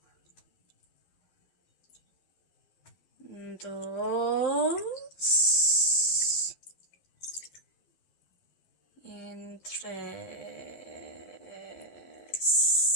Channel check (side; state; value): right; late; 12 ms